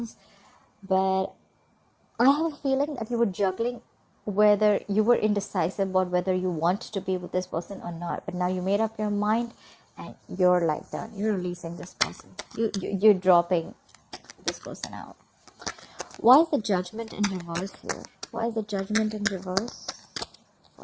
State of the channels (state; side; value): identical; both; correlation 1.00